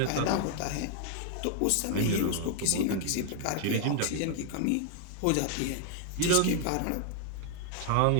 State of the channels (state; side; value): different; both; correlation 0.00